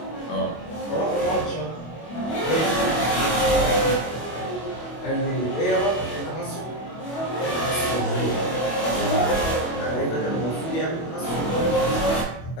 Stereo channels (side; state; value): right; late; 25 ms